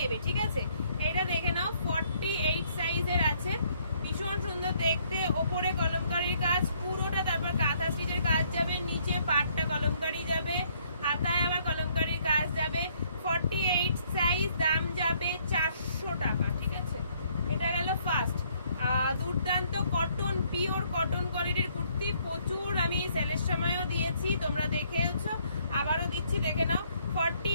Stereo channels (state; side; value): inverted; both; correlation -0.67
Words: ঠিক আছে? এটা দেখে নাও, 48 সাইজের আছে, ভীষণ সুন্দর দেখতে, ওপরে কলমকারীর কাজ পুরোটা, তারপর কাঁথা স্টিচের কাজ যাবে, নিচে পাটটা কলমকারী যাবে, হাতায় আবার কলমকারীর কাজ যাবে। 48 সাইজ, দাম যাবে 400 টাকা, ঠিক আছে? এটা গেল ফার্স্ট। দুর্দান্ত কটন, পিওর কটন কোয়ালিটির কুর্তি, প্রচুর আমি সেলের সময়ও দিয়েছি, তোমরা দেখেওছো, আবারও দিচ্ছি, দেখে নাও।